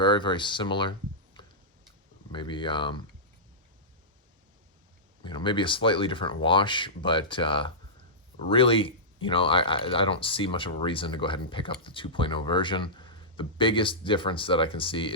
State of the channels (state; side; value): normal; both; correlation -0.15